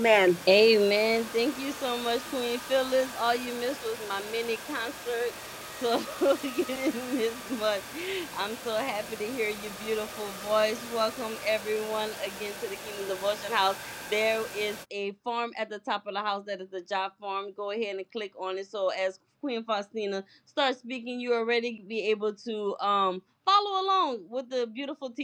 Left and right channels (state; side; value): identical; both; correlation 1.00